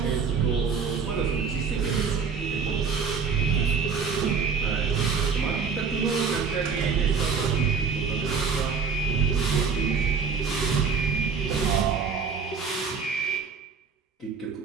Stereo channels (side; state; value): left; quieter; 5.6 dB